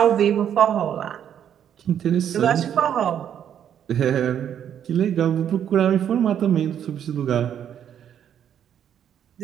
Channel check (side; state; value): left; quieter; 9.4 dB